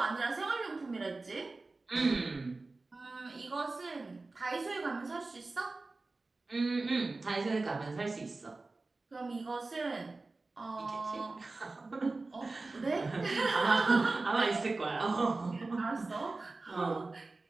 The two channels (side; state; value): left; quieter; 3.4 dB